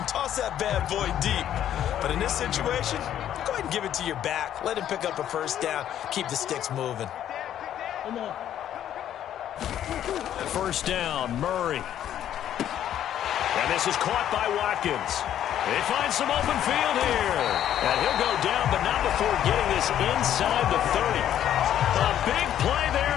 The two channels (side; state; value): right; quieter; 10.9 dB